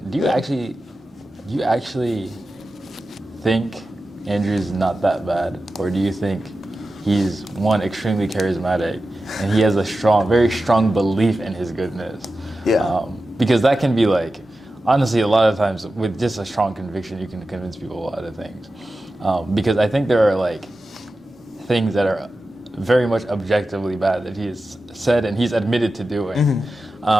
Do you actually think Andrew's not that bad, or do you think he's one extremely charismatic and he has a very strong belief in his goodness? Yeah. Because that can be like, honestly, a lot of times with just a strong conviction, you can convince people a lot of things. Because I think there are like things that are very much objectively bad that he has said and he's admitted to doing.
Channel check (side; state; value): both; normal; correlation 0.93